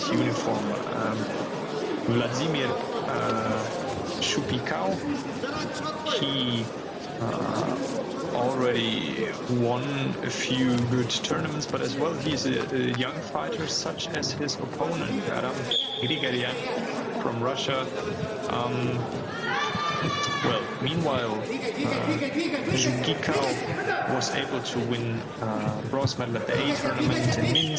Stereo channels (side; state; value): both; identical; correlation 1.00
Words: uniform. Vladimir Shupikau, he already won a few good tournaments, but as well he's a young fighter, such as his opponent, Adam Grigoryan from Russia. Meanwhile, Shupikau was able to win bronze medal at the A tournament in